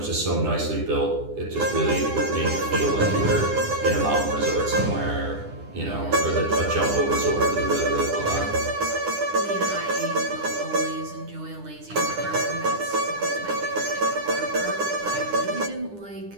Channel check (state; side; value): late; left; 9.9 ms